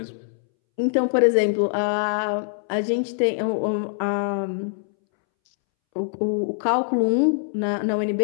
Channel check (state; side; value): silent; right; 63 dB below the other